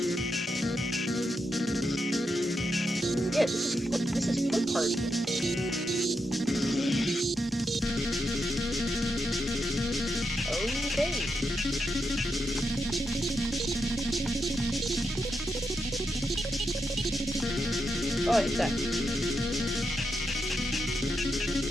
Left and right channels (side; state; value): both; normal; correlation 0.84